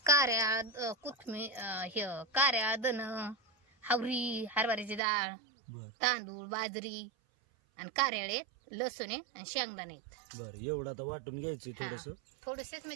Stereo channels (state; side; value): drops out; left; at 5.0 s